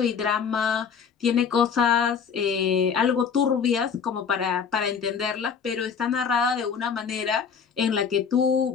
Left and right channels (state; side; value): quieter; right; 6.6 dB